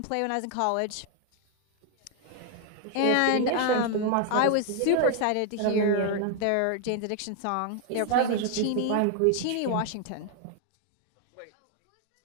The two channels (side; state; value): both; different; correlation 0.00